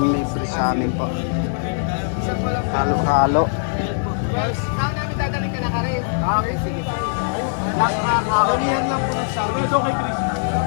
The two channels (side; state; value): right; silent; digital silence